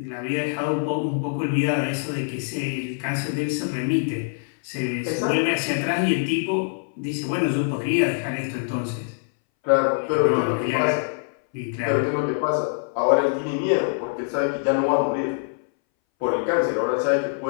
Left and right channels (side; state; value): right; silent; 61 dB below the other